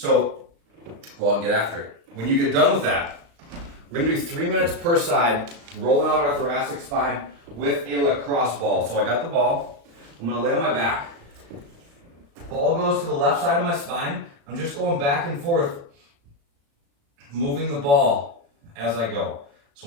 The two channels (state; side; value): late; left; 36 ms